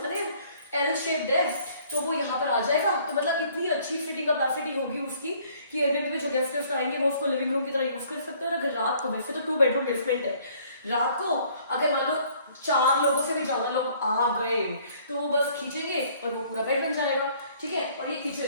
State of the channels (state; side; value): inverted; both; correlation -0.59